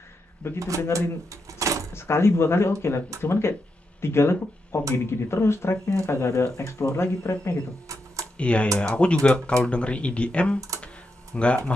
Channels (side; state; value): both; normal; correlation 0.84